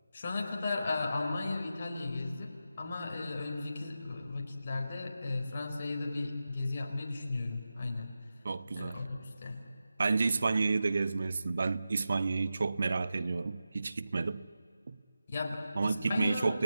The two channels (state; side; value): inverted; both; correlation -0.91